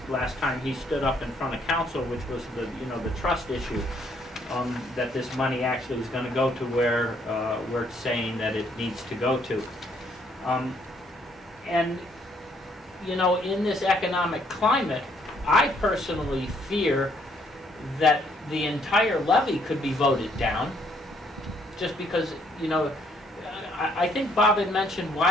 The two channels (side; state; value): both; normal; correlation 0.68